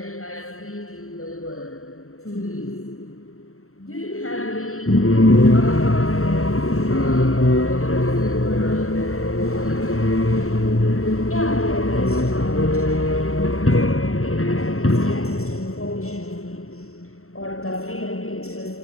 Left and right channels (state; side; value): late; right; 0.63 ms